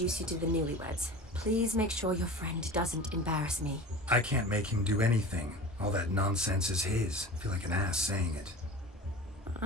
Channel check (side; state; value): both; normal; correlation 0.35